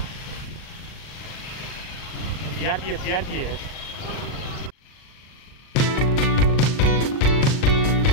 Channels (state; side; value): late; right; 39 ms